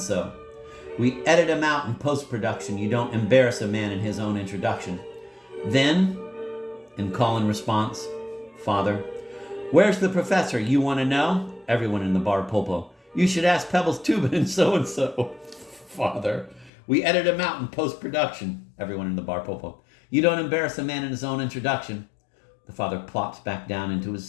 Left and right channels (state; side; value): drops out; right; at 16.7 s